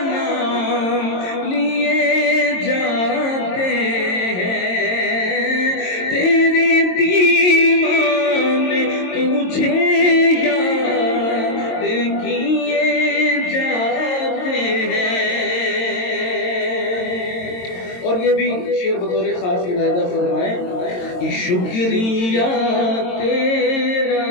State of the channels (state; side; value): late; right; 22 ms